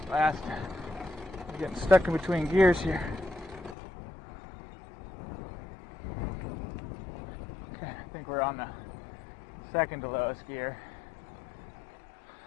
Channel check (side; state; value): right; drops out; at 3.8 s